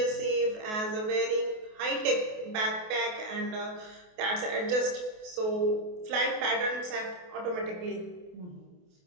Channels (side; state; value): left; late; 28 ms